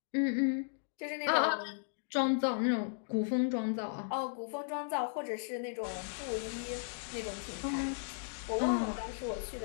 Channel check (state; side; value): silent; right; digital silence